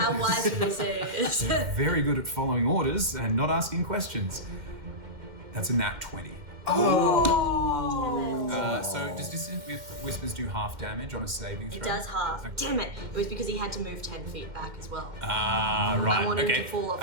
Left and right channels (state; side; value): late; left; 2.1 ms